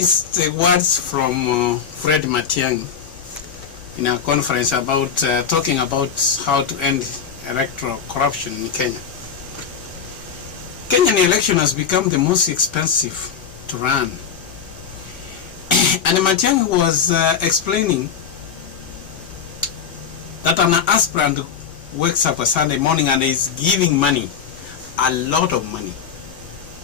the words from Fred Matiang'i in a conference about talking about how to end electoral corruption in Kenya. Kenyan election has become the most expensive to run. And Matiang'i was explaining that an aspirant wakes up a Sunday morning and is giving money, a lot of money.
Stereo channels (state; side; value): quieter; right; 7.1 dB